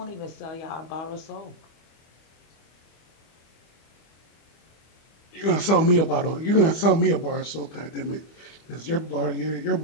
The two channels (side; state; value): right; late; 25 ms